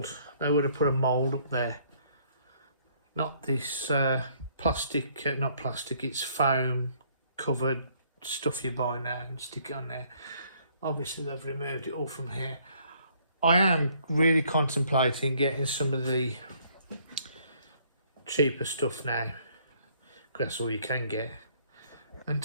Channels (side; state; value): both; inverted; correlation -0.64